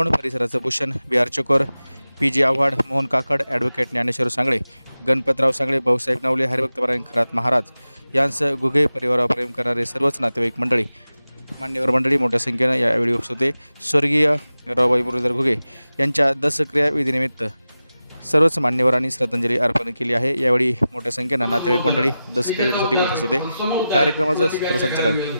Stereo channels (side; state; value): both; inverted; correlation -0.94